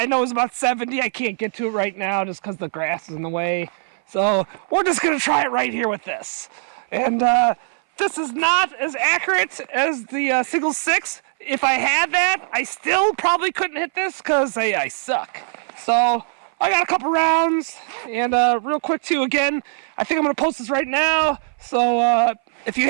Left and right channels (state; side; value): silent; left; 61 dB below the other